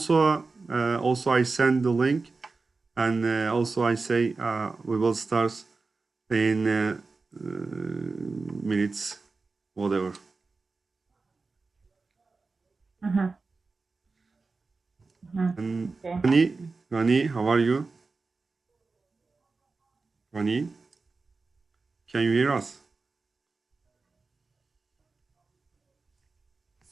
I send the link, and also I say we will start in minutes, whatever. Mm-hmm. Mm-hmm. And Okay. Rani, how are you? Rani, can you hear us?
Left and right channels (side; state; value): left; quieter; 4.0 dB